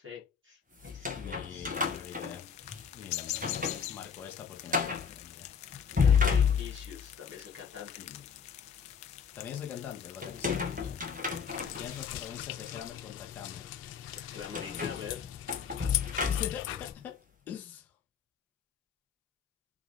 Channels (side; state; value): right; quieter; 6.7 dB